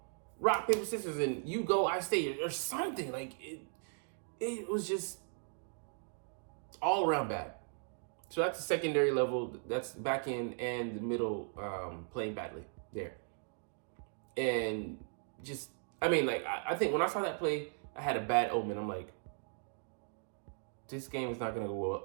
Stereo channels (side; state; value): left; silent; 53 dB below the other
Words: Rock, paper, scissors, and you go, I stay, or something. It was just all around bad. So that's the secondary level. That's back end and the middle playing badly there. And just, I think when I saw that play, I had a bad omen. I'm like, this game is not going to go